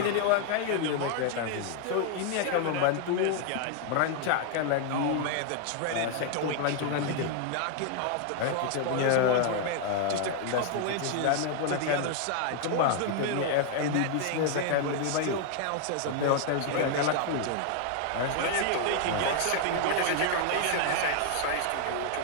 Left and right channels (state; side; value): different; both; correlation 0.00